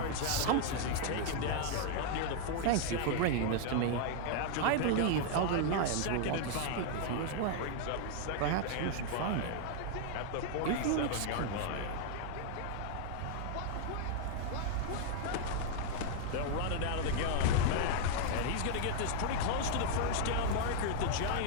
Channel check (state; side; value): different; both; correlation 0.00